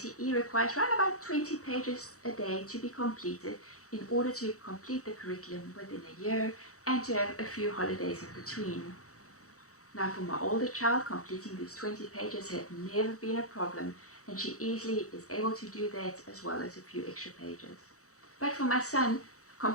requires around about 20 pages a day to be completed in order to complete the curriculum within a year and to have a few holidays in between. Now, for my older child, completing these 20 pages had never been a problem, and she easily is able to do that as well as a few extra pages. But for my son,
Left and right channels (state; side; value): late; right; 0.65 ms